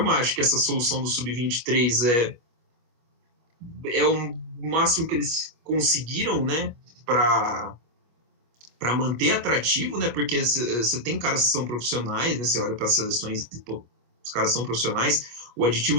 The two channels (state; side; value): late; left; 25 ms